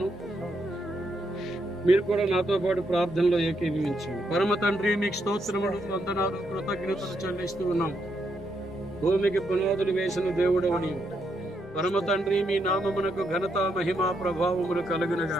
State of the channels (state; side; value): normal; both; correlation 0.78